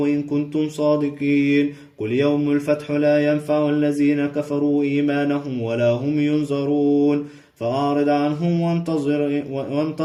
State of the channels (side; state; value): both; identical; correlation 1.00